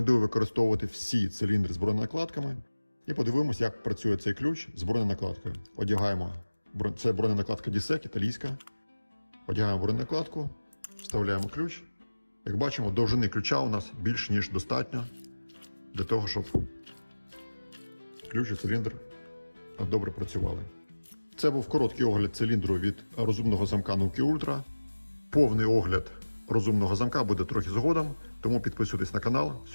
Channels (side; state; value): both; inverted; correlation -1.00